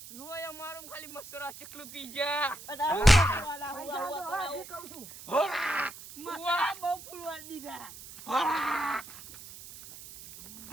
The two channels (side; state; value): right; noise; hiss, 15 dB below the sound